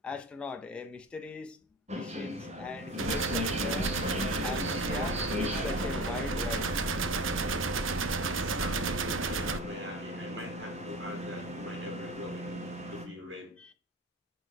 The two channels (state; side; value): normal; both; correlation 0.34